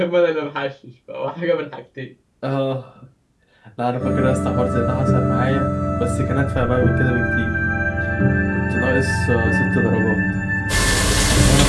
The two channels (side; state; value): both; identical; correlation 1.00